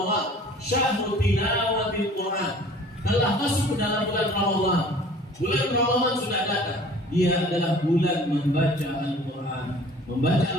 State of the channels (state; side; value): normal; both; correlation 0.49